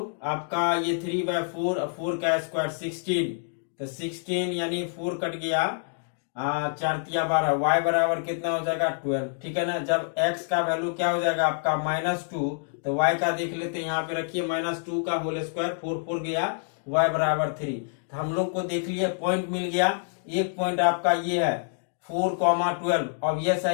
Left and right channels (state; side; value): silent; right; digital silence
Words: आपका ये 3/4, 4 का स्क्वायर 16, तो 16 यानी 4 कट गया 4 × 12, y बराबर कितना हो जाएगा 12। ठीक है ना। जब x का वैल्यू क्या हो जाएगा आपका -2, तो y का देख लेते हैं, यहाँ पे रखिए -2 का होल स्क्वायर, 4 गया, y बराबर 3। तो हम लोग को देख लिया पॉइंट मिल गया। एक पॉइंट आपका ये है 4,12 ऑब्वियस